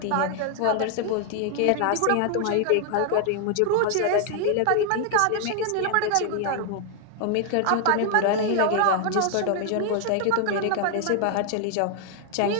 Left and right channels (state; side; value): different; both; correlation 0.00